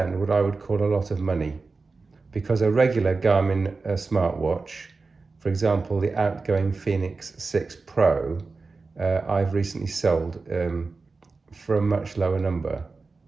what I would call a lot of money, because a regular Garmin smartwatch, for example, the outgoing Phoenix 6 Pro, I've recently sold for a much lower number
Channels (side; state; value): left; quieter; 4.0 dB